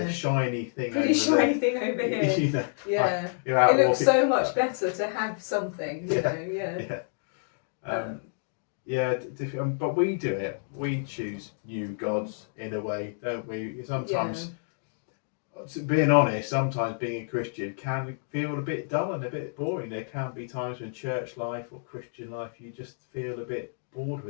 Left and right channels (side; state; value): right; silent; digital silence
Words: a shiny thing over here. You know, it looks so much better to have something, you know. But we do it. We choose new gods in a way, don't we? Sometimes, being honest, sometimes being a Christian can feel a bit dull and a bit boring. There can be times when church life or Christian life, you just feel a bit bored